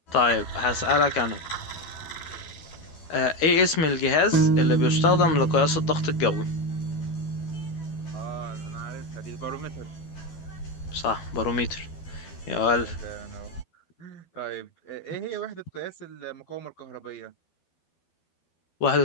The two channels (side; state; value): right; late; 13 ms